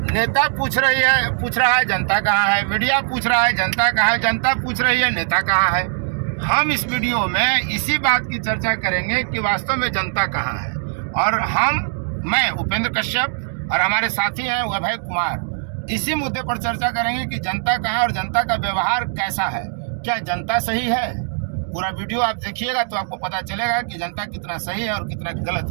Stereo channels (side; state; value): left; silent; digital silence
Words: नेता पूछ रहा है जनता कहाँ है। मीडिया पूछ रहा है जनता कहाँ है। जनता पूछ रही है नेता कहाँ है। हम इस वीडियो में इसी बात की चर्चा करेंगे कि वास्तव में जनता कहाँ है। और मैं उपेंद्र कश्यप और हमारे साथी हैं अभय कुमार, इसी मुद्दे पर चर्चा करेंगे कि जनता कहाँ है और जनता का व्यवहार कैसा है। क्या जनता सही है? पूरा वीडियो आप देखिएगा तो आपको पता चलेगा कि जनता कितना सही है और कितना गलत